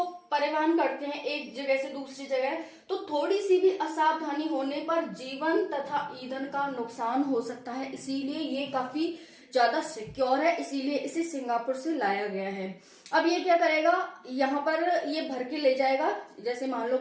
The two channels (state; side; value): identical; both; correlation 1.00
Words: परिवहन करते हैं एक जगह से दूसरी जगह, तो थोड़ी सी भी असावधानी होने पर जीवन तथा ईंधन का नुकसान हो सकता है, इसीलिए ये काफी ज्यादा सिक्योर है, इसीलिए इसे सिंगापुर से लाया गया है। अब ये क्या करेगा, यहाँ पर ये भर के ले जाएगा, जैसे मान लो